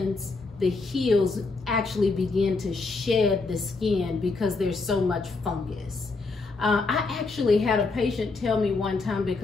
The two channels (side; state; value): right; quieter; 3.8 dB